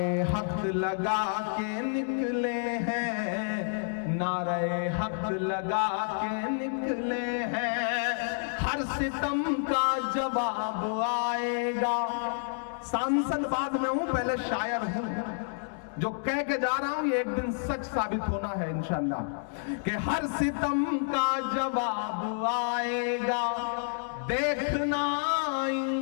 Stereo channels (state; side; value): silent; right; digital silence